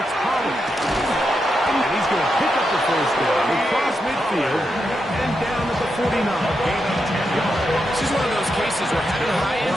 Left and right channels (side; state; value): both; normal; correlation 0.85